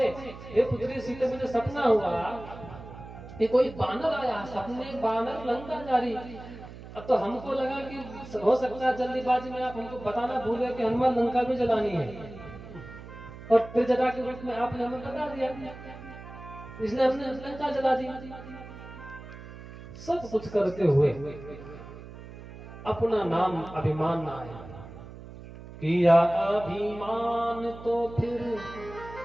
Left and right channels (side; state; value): right; noise; hum, 15 dB below the sound